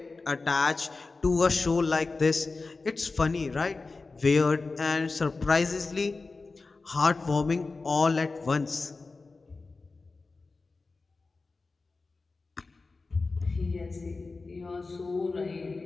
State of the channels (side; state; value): right; quieter; 3.8 dB